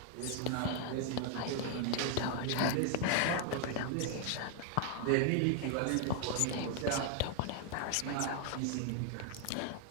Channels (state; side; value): different; both; correlation 0.00